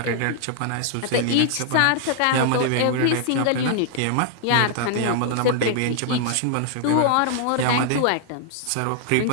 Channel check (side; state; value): both; different; correlation 0.00